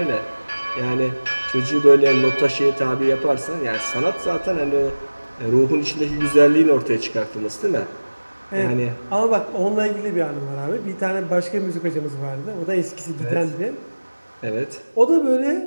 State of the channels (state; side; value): inverted; both; correlation -1.00